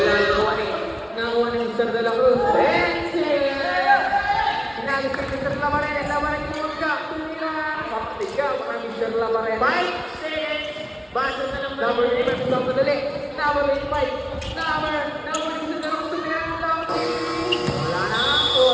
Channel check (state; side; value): identical; both; correlation 1.00